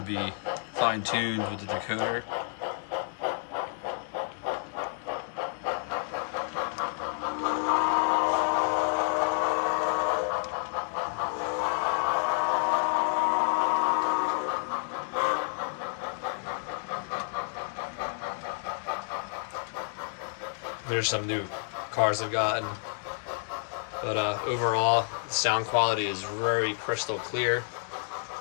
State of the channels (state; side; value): silent; right; 58 dB below the other